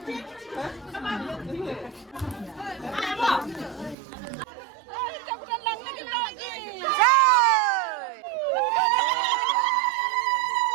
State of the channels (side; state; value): left; drops out; at 4.0 s